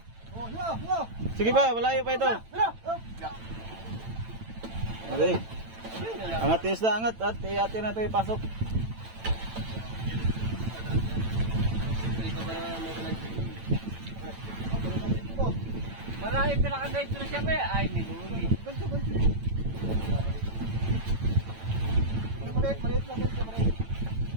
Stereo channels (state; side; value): late; left; 9.0 ms